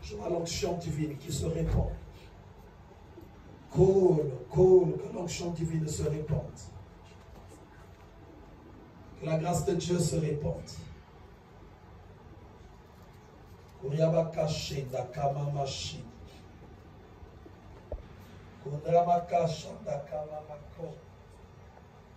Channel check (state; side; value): identical; both; correlation 1.00